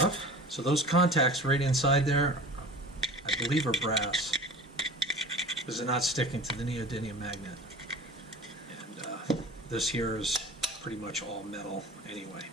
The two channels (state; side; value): normal; both; correlation 0.39